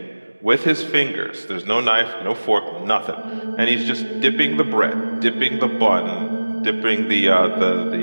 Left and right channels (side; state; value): both; inverted; correlation -1.00